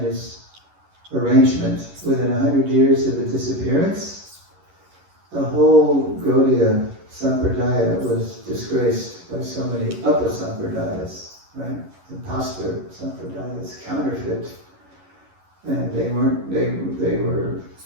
arrangement, within 100 years of its disappearance, the whole Gaudiya Sampradaya was disgraced by so many Upasampradayas, right? Imposter Sampradayas, counterfeit, and they weren't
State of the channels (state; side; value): late; left; 11 ms